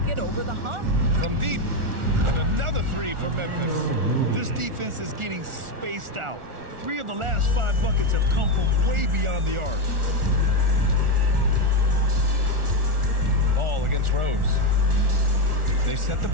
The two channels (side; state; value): left; late; 1.4 ms